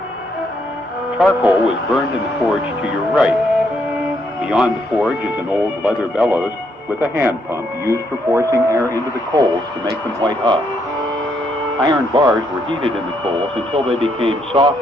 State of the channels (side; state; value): both; normal; correlation 0.74